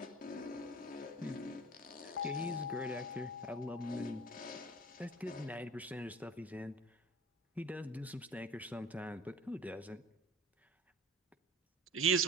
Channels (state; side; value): normal; both; correlation 0.41